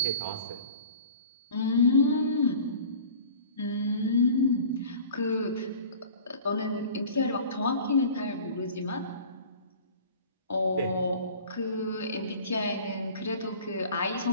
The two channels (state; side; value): inverted; both; correlation -0.44